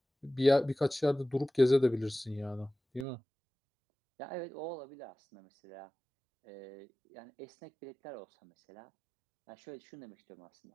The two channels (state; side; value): drops out; left; at 3.1 s